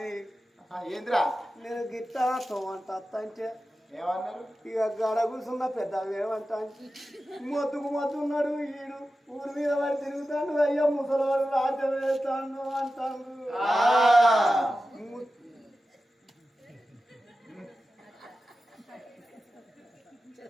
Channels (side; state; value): both; normal; correlation 0.93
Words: ఏందిరా నేను గిట్టా తోమంట అంటే ఏమన్నారు ఇక గడ కూర్చున్న పెద్ద ఏమంటా మొత్తున్నాడు ఈడు ఊరి మీద వాడు తిరుగుతాడు అయ్యో ముసలివాడు రాజ్యం వేస్తాడు అంటాడు